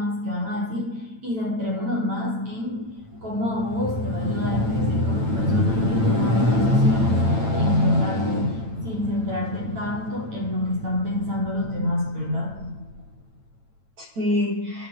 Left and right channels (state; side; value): late; left; 9.0 ms